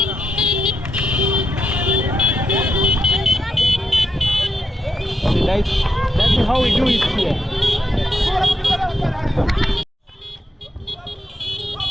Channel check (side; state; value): both; normal; correlation 0.83